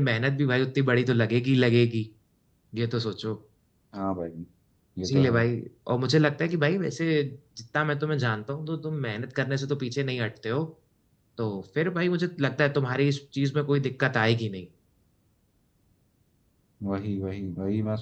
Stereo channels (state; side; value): identical; both; correlation 1.00